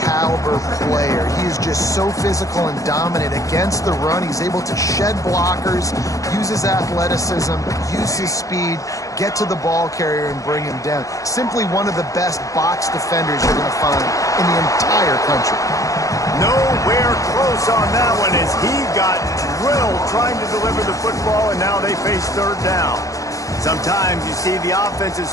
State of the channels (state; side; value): late; right; 0.16 ms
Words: caliber player. He is just so physical and dominant against the run. He's able to shed blockers, use his athleticism, use his speed, get to the ball carrier and bring him down. Simply one of the best box defenders you're going to find in the entire country. Nowhere close on that one as he got drilled trying to deliver the football, and now they face 3rd down. Sometimes you see the offenses